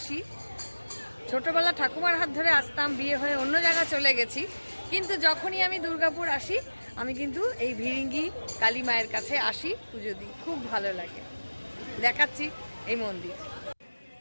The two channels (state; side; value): inverted; both; correlation -1.00